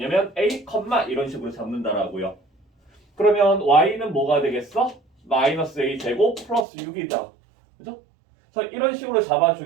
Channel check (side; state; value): left; drops out; at 6.7 s